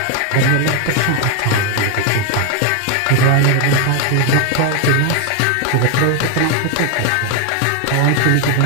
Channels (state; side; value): different; both; correlation 0.01